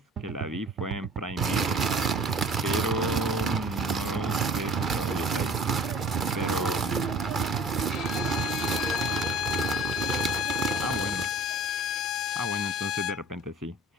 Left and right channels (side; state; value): both; normal; correlation 0.45